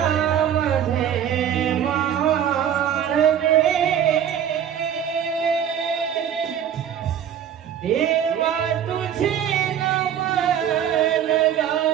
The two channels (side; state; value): left; quieter; 9.4 dB